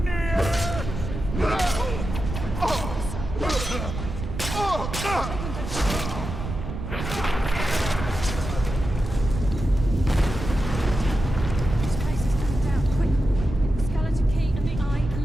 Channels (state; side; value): noise; right; rumble, 6 dB below the sound